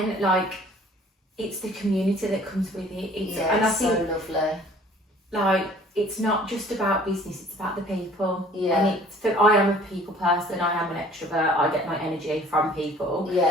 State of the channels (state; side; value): normal; both; correlation 0.52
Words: like, it's the community that comes with it. And I think, so lovely. Like, it's not just about business, it's about the people. Yeah. And I am a people person, I am an extrovert, I get my energy from people.